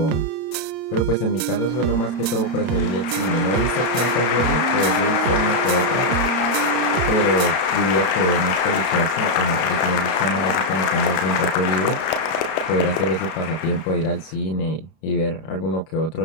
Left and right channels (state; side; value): late; right; 31 ms